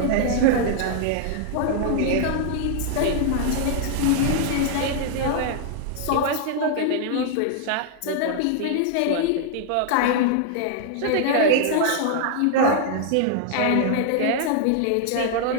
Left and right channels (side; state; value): both; different; correlation -0.01